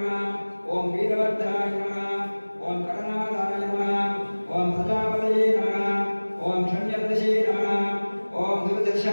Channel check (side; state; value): both; inverted; correlation -1.00